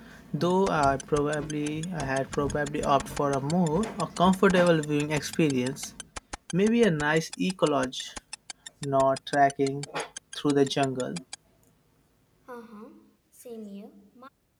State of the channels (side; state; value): both; identical; correlation 1.00